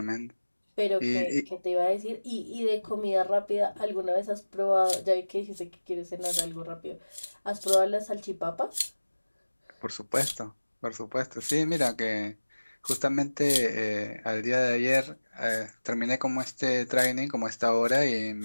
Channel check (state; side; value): inverted; both; correlation -1.00